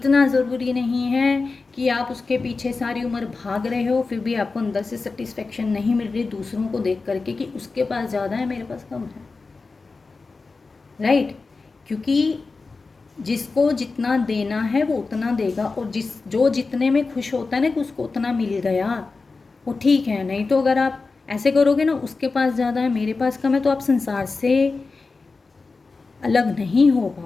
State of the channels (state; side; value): quieter; right; 4.0 dB